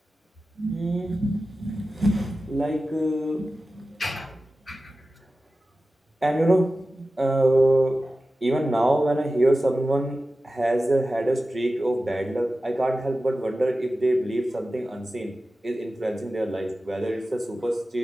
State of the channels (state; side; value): normal; both; correlation 0.94